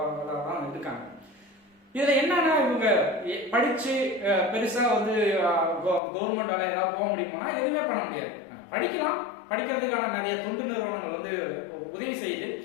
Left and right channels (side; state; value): right; drops out; at 6.0 s